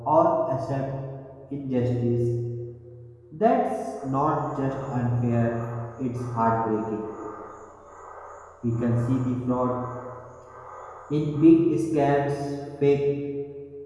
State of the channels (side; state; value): both; identical; correlation 1.00